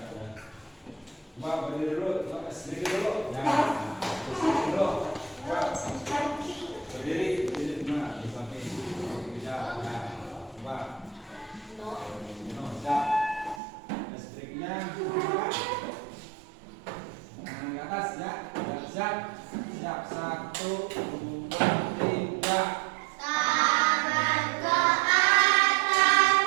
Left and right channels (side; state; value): left; drops out; at 13.6 s